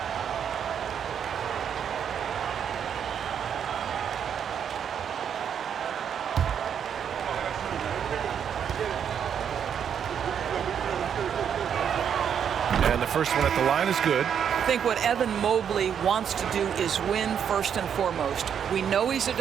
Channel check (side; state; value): left; quieter; 8.1 dB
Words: And the first one at the line is good. I think what Evan Mobley wants to do is win first and foremost. We know he's a